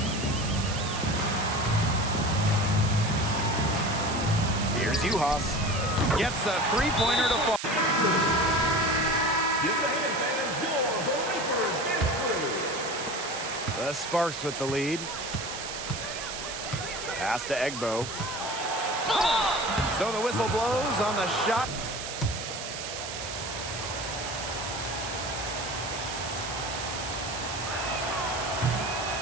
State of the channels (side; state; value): right; noise; hiss, 7 dB below the sound